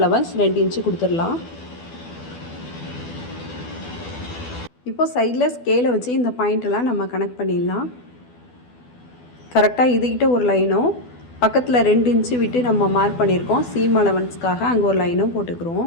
2 இன்ச்சு கொடுத்துடலாம். இப்போ சைடில் ஸ்கேலை வச்சு இந்த பாயிண்டெல்லாம் நம்ம கனெக்ட் பண்ணிடலாம். கரெக்டாக இதுகிட்ட ஒரு லைனும் பக்கத்தில் 2 இன்ச்சு விட்டு நம்ம மார்க் பண்ணியிருக்கோம். சீம் அலவன்ஸ்க்காக அங்கே ஒரு லைனும்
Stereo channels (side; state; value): right; late; 12 ms